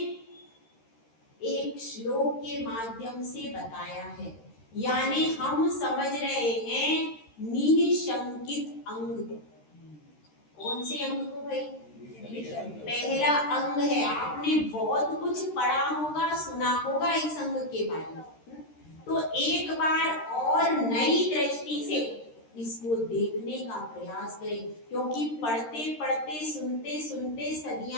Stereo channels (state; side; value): late; right; 13 ms